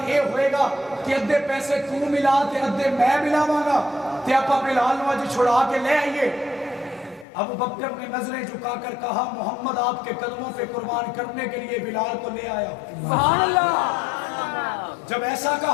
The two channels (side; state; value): right; drops out; at 7.2 s